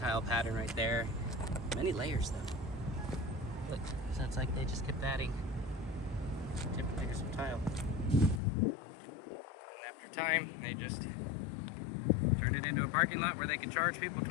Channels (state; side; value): drops out; right; at 8.4 s